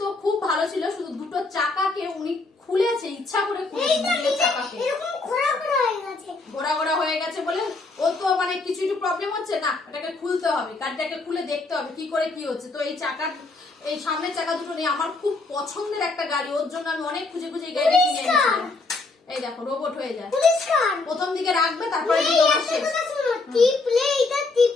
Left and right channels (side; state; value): right; quieter; 3.6 dB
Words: খুব ভালো ছিল। শুধু দুটো চাকাকে উনি খুলেছে, ইচ্ছা করে খুলেছে চাকাকে, এরকম ঘোরা ঘোরা হয়ে গেছে, ঘোরা ঘোরা হয়ে গেছে বলে ও তো মানে কিছু একটু প্রবলেম হচ্ছে না, এটাকে খুলতে হবে, গাড়িটাকে খুলে দেখতে হবে কি করে কি হচ্ছে। তো এই চাকার, এই সামনের চাকা দুটো নেই, আমার খুব পছন্দের একটা গাড়ি, ওর জন্য আমি অনেক খুঁজে খুঁজে এই গাড়িটা কিনে এনেছিলাম। এই দেখো রোবট হয়ে যায়, প্রথম দিকে রাখবে, তারপরে টিপলে এটা